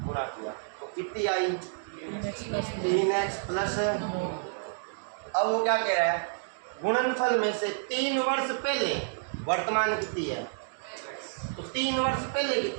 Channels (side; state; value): left; silent; digital silence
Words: गुणा किया तो कितनी आई? 3x plus. अब वो क्या कह रहा है? गुणनफल में से 3 वर्ष पहले वर्तमान कितनी है? तो 3 वर्ष पहले